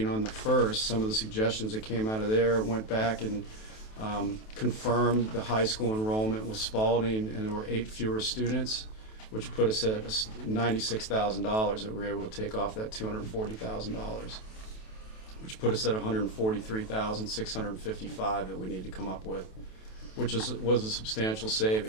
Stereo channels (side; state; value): right; late; 28 ms